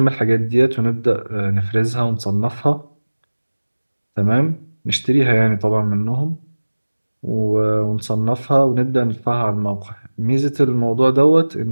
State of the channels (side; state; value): both; inverted; correlation -1.00